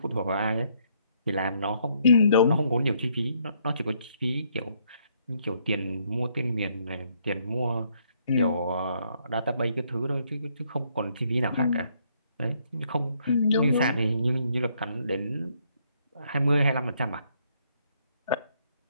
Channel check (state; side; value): inverted; both; correlation -0.70